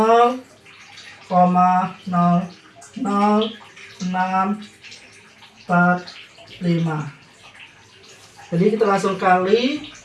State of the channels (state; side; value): identical; both; correlation 1.00